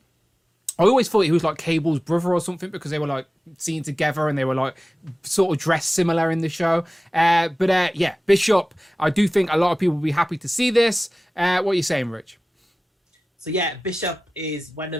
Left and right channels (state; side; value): normal; both; correlation 0.97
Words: always thought he was like Cable's brother or something, because they were like seen together and they were like sort of dressed similar in the show. But Bishop, I do think a lot of people will be happy to see this. What are you saying, Rich? So yeah, Bishop is